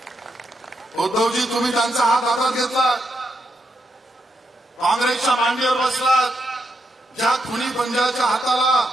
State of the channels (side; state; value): both; normal; correlation 0.82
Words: उद्धवजी, तुम्ही त्यांचा हात हातात घेतला, काँग्रेसच्या मांडीवर बसलात. ज्या खुनी पंजाच्या हाताला